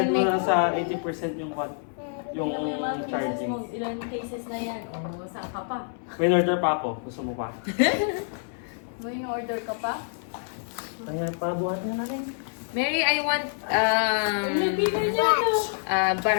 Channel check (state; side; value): silent; right; digital silence